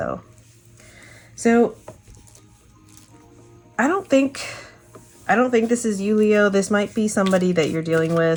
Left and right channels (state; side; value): identical; both; correlation 1.00